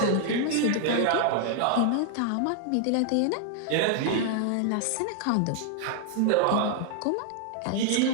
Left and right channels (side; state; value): both; different; correlation 0.00